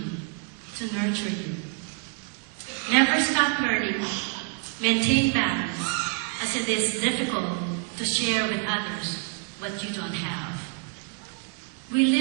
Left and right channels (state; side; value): quieter; left; 37.0 dB